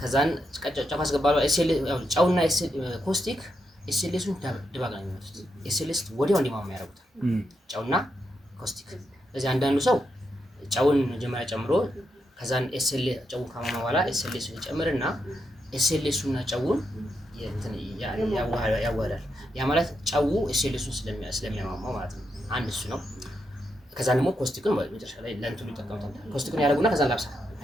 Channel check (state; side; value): normal; both; correlation 0.83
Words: ከዛን ጨው ያስገባል። ጨውና ኮስቲክ ኤስኤልኤሱን ድባቅ ነው የሚመጡት። ኤስኤልኤስ ወዲያው እንዲማማ ያደርጉታል ጨውና ኮስቲክ። ስለዚህ አንዳንዱ ሰው ጨውን መጀመሪያ ጨምሮ ከዛን ጨውን ካማማ በኋላ ኤስኤልኤሱን ይጨምርና ኤስኤልኤሱና ጨውን ያዋህዳል። ያ ማለት ጨው ኤስኤልኤሱን ስለሚያማማው ማለት ነው። አንድ እሱ ነው። ከዛ ደግሞ ኮስቲክን መጨረሻ ላይ ለእንትኑ ይጠቀሙታል። ኮስቲክን ያደርጉና ከዛ ላብሳ